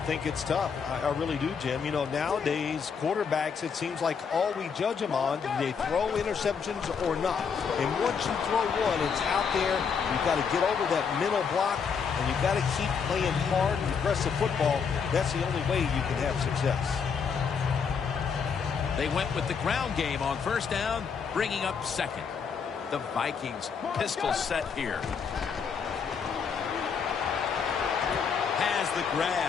it's tough. I really do, Jim. You know, nowadays, quarterbacks, it seems like all we judge them on, do they throw interceptions or not? And once you throw one, it's out there. You've got to get over that mental block, and you've got to keep playing hard and aggressive football. That's the only way you can have success. They went with the ground game on first down, bringing up second. The Vikings pistol set here. Has the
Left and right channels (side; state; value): right; quieter; 6.2 dB